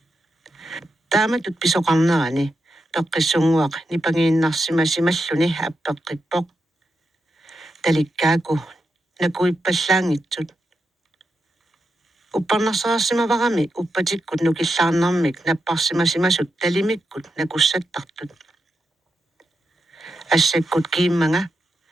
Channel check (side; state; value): both; normal; correlation 0.86